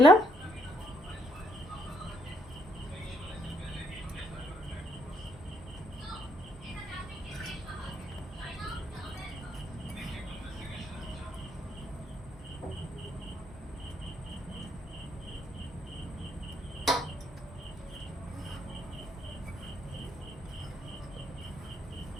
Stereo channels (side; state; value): both; normal; correlation 0.72